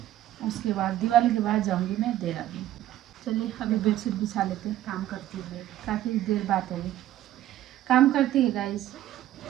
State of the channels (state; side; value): quieter; left; 13.5 dB